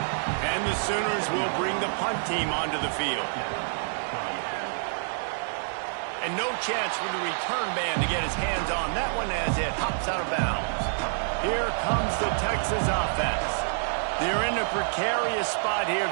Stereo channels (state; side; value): silent; left; digital silence